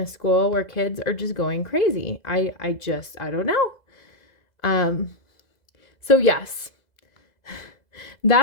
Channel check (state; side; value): late; right; 2.0 ms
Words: school where kids are just going crazy. I don't know. So yes,